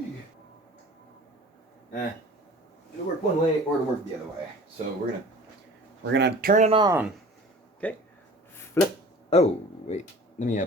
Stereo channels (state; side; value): normal; both; correlation 0.43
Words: It'll work one way or it'll work the other way. So we're gonna turn it on. Okay. Flip. Oh, wait. Let me